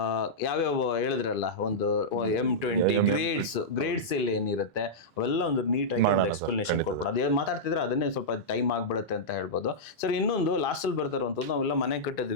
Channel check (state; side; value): normal; both; correlation -0.11